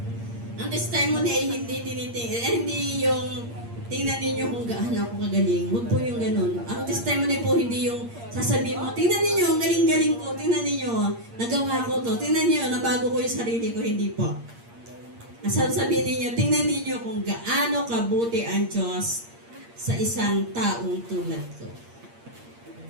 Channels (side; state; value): left; late; 8.6 ms